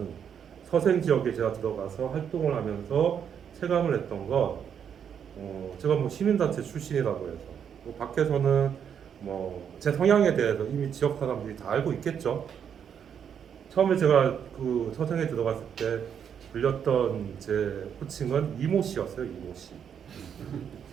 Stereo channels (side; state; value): left; quieter; 8.1 dB